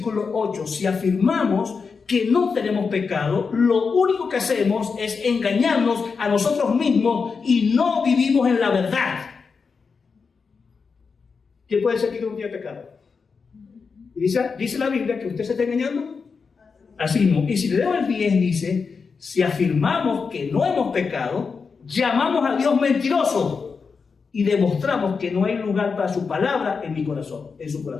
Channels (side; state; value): right; quieter; 5.2 dB